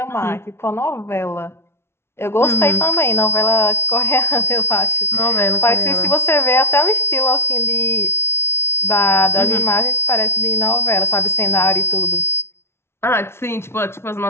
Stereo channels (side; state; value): right; late; 0.12 ms